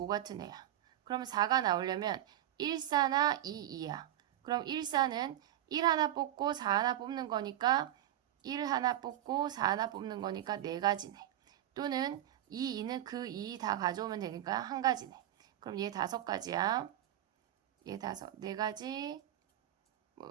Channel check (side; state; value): left; quieter; 12.7 dB